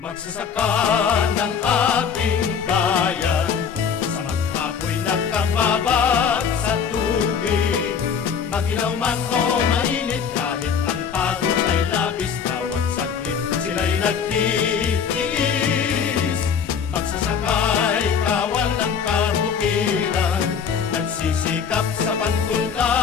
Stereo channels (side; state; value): right; quieter; 6.8 dB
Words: Magsasaka ng ating bayan, sa maghapoy nakababad sa tubig. Magilaw man o mainit, kahit ang pagod ay labis, bawat saglit sila'y nagtitiis. Magsasakay, kawal ng kabukiran, nagsisikap sa